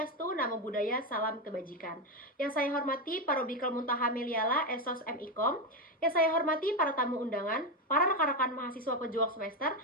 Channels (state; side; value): normal; both; correlation 0.11